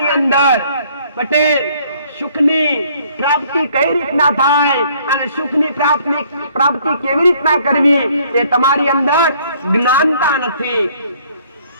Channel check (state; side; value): inverted; both; correlation -0.61